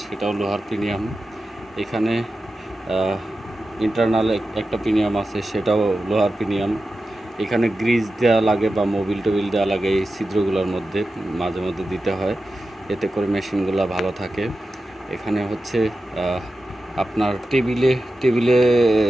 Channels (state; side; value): normal; both; correlation 0.92